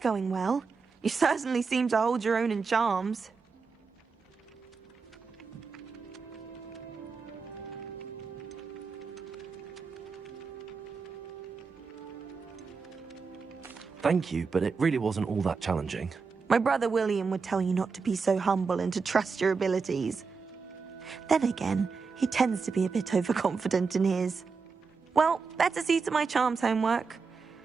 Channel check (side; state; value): left; quieter; 5.0 dB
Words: well. You certainly seem to hold your own in charms. Thank you, but it really wasn't all that challenging. My brother William would tell you not to be so humble and to trust your abilities. Then again, he tends to be a bit overconfident in his. Well, better see to my charms homework.